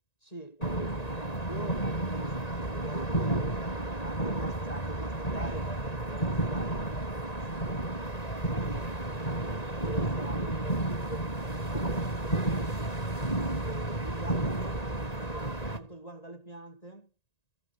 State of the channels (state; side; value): late; right; 1.9 ms